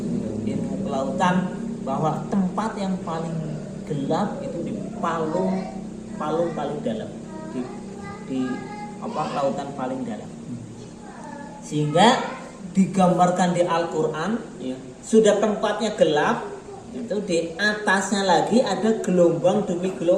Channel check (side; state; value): both; identical; correlation 1.00